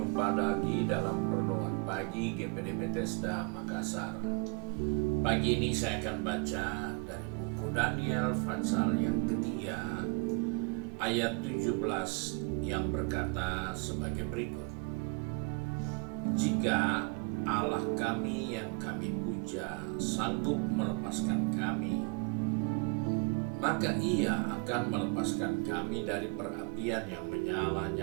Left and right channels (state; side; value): quieter; left; 32.3 dB